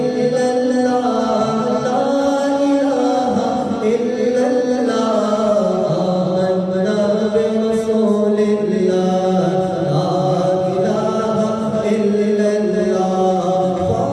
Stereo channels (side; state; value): both; identical; correlation 1.00